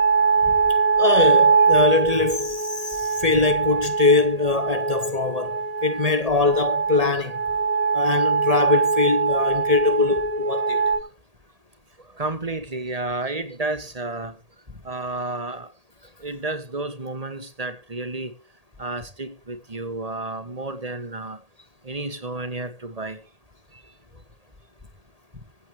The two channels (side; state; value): left; late; 1.8 ms